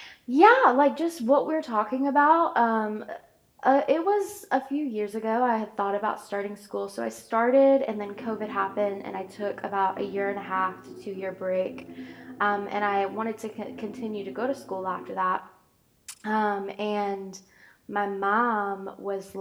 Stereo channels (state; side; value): identical; both; correlation 1.00